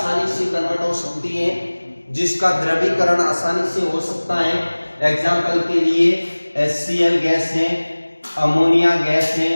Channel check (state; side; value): inverted; both; correlation -1.00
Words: से कन्वर्ट हो सकती है, जिसका द्रवीकरण आसानी से हो सकता है। एग्जाम्पल के लिए HCl गैस है, अमोनिया गैस है,